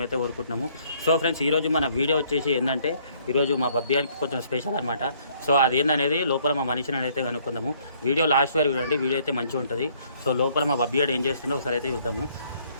కోరుకుంటున్నాము. సో ఫ్రెండ్స్, ఈరోజు మన వీడియో వచ్చేసి ఏంటంటే ఈరోజు మా బబ్బియానికి కొంచెం స్పెషల్ అనమాట. సో అదేందనేది లోపల మా మనిషిని అయితే కనుక్కుందాము. వీడియో లాస్ట్ వరకు చూడండి, వీడియో అయితే మంచిగా ఉంటుంది. సో లోపల మా బబ్బియాడు ఏం చేస్తుండో ఒకసారి అయితే చూద్దాము.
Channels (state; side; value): inverted; both; correlation -0.64